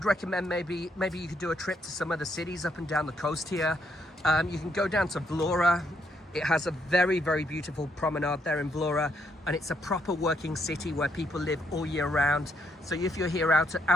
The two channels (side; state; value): both; normal; correlation 0.74